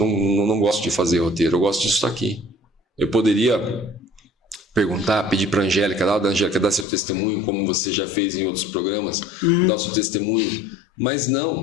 gosto de fazer roteiro, eu gosto disso aqui. Eu poderia perguntar, pedir para a Angélica, dar seu testemunho, como você já fez em outros programas, dar o seu testemunho. Mas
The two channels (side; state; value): right; drops out; at 6.9 s